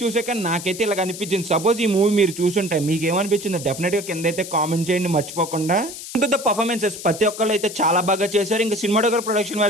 చూసాక నాకైతే ఇలా అనిపించింది. సపోజ్ ఈ మూవీ మీరు చూసుంటే మీకు ఏమనిపించిందో డెఫినెట్ గా కింద అయితే కామెంట్ చేయండి మర్చిపోకుండా. ద పర్ఫార్మెన్సెస్ ప్రతి ఒక్కళ్ళు అయితే చాలా బాగా చేశారు. ఇంకా సినిమాటోగ్రఫీ ప్రొడక్షన్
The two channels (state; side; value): noise; left; hiss, 11 dB below the sound